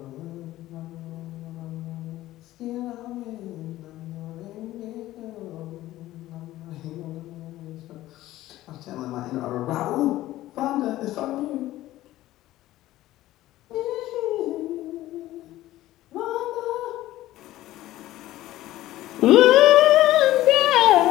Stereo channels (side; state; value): right; quieter; 15.5 dB